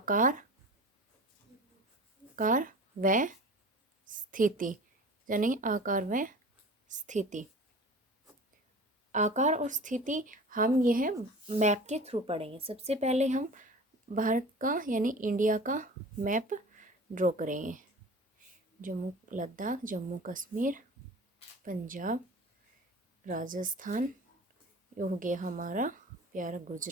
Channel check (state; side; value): normal; both; correlation 0.39